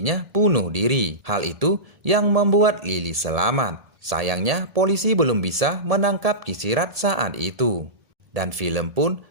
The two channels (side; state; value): left; late; 1.7 ms